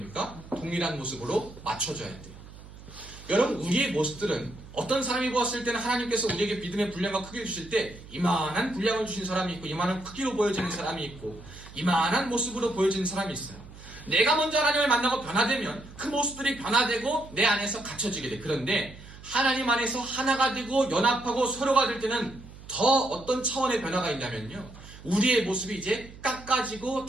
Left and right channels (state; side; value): noise; right; hum, 18 dB below the sound